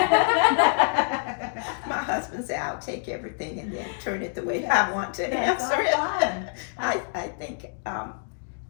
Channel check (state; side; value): silent; right; digital silence